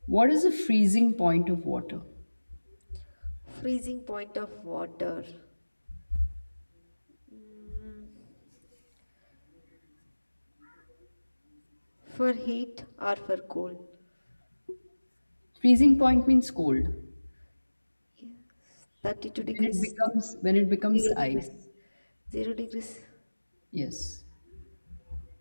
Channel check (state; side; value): inverted; both; correlation -1.00